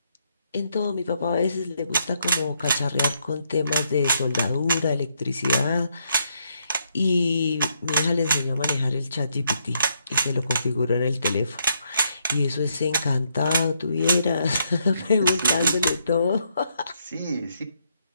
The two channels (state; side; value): inverted; both; correlation -0.75